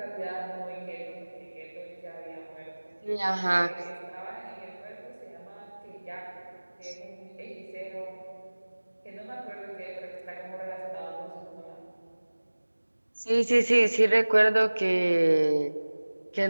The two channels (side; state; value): both; inverted; correlation -1.00